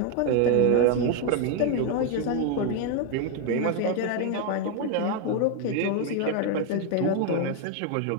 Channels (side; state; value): both; different; correlation 0.01